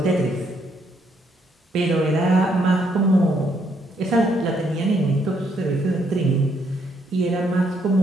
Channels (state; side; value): normal; both; correlation 0.72